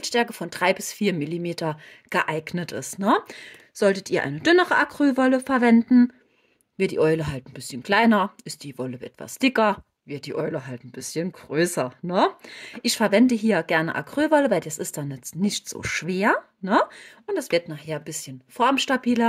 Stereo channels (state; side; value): identical; both; correlation 1.00